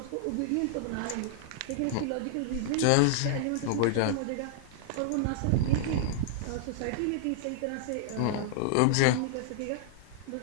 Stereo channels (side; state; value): both; different; correlation -0.01